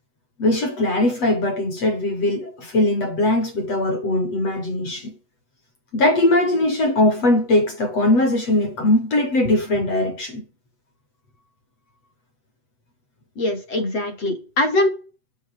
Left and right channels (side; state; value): right; late; 8.0 ms